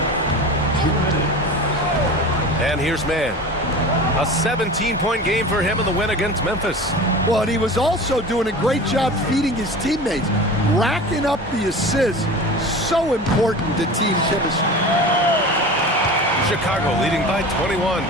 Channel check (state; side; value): normal; both; correlation 0.34